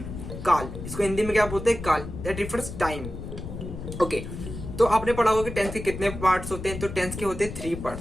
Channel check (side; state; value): left; noise; rumble, 9 dB below the sound